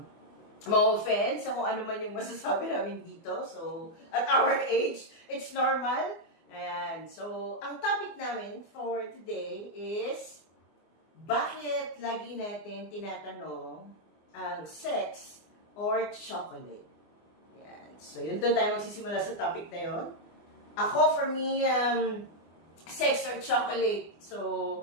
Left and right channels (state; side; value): late; right; 24 ms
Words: ma-offend sa kung ano man yung masasabi namin dito. So, at our age, it's normal. Ayan. So, ang topic namin for today is bakit lagi natin tinatanong ang sex or chocolate? Ayan. So, yun doon tayo magsisimula sa topic na yun. Ako, for me, sex or chocolate. So,